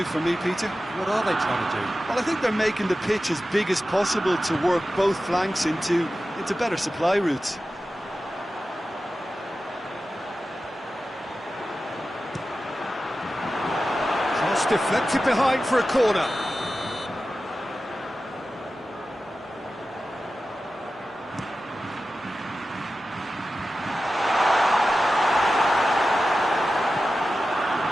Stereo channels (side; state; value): both; normal; correlation 0.93